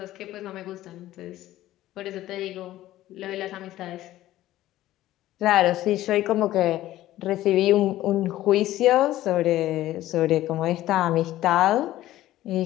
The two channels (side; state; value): right; quieter; 14.7 dB